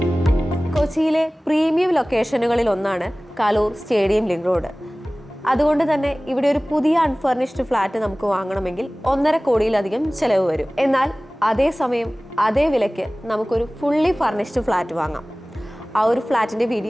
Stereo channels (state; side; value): normal; both; correlation 0.98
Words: കൊച്ചിയിലെ പ്രീമിയം ലൊക്കേഷനുകളിൽ ഒന്നാണ് കലൂർ സ്റ്റേഡിയം ലിങ്ക് റോഡ്. അതുകൊണ്ട് തന്നെ ഇവിടെ ഒരു പുതിയ അൺഫർണിഷ്ഡ് ഫ്ലാറ്റ് നമുക്ക് വാങ്ങണമെങ്കിൽ 1.5 കോടിയിലധികം ചെലവ് വരും. എന്നാൽ അതേസമയം അതേ വിലയ്ക്ക് നമുക്കൊരു ഫുള്ളി ഫർണിഷ്ഡ് ഫ്ലാറ്റ് വാങ്ങാം. ആ ഒരു ഫ്ലാറ്റിൻ്റെ